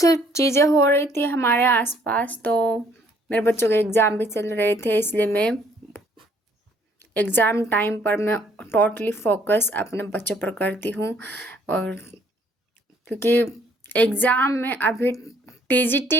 चीज़ें हो रही थी हमारे आसपास, तो मेरे बच्चों के एग्ज़ाम भी चल रहे थे, इसलिए मैं एग्ज़ाम टाइम पर मैं टोटली फोकस अपने बच्चों पर करती हूँ। और क्योंकि एग्ज़ाम में अभी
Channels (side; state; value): both; normal; correlation 0.63